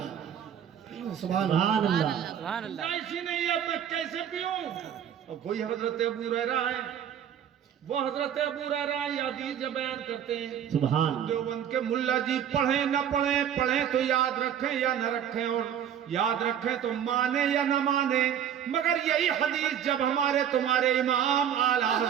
سبحان اللہ، سبحان اللہ۔ ایسی نہیں اب میں کیسے پیوں؟ اب وہی حضرت ابو ہریرہ ہے، وہ حضرت ابو ہریرہ یہ حدیث جو بیان کرتے ہیں، سبحان دیوبند کے ملا جی پڑھیں نہ پڑھیں، پڑھیں تو یاد رکھیں یا نہ رکھیں، اور یاد رکھیں تو مانیں یا نہ مانیں، مگر یہی حدیث جب ہمارے تمہارے امام اعلیٰ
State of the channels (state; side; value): quieter; left; 9.2 dB